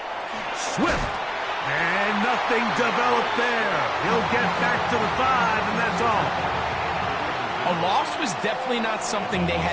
Swift. And nothing developed there. He'll get back to the 5, and that's all. A loss was definitely not something they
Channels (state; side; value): identical; both; correlation 1.00